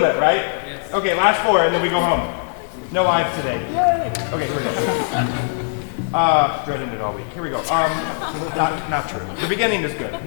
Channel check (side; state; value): right; silent; 62 dB below the other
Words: right? Yes. Okay, last four, and then we go home. No eyes today. Yay! Okay, here we go. Dreading it all week. Here we go. Not true. The beginning is good.